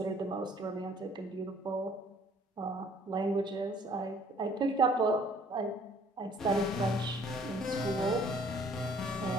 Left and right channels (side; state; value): both; normal; correlation 0.58